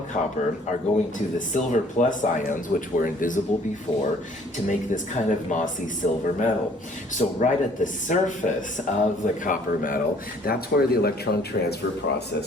copper are going to the silver plus ions, which were invisible before, to make this kind of mossy silver metal. So right at the surface of the copper metal, that's where the electron transfer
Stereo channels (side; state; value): both; normal; correlation 0.57